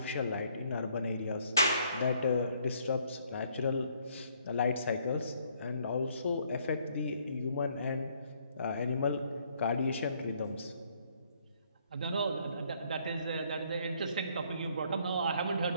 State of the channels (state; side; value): inverted; both; correlation -0.66